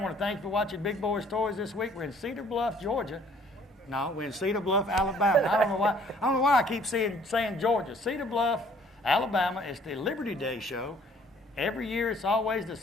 want to thank you for watching Big Boyz Toys this week. We're in Cedar Bluff, Georgia. No, we're in Cedar Bluff, Alabama. I don't know why I keep saying Georgia. Cedar Bluff, Alabama. It's the Liberty Day show. Every year, it's always the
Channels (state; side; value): normal; both; correlation 0.58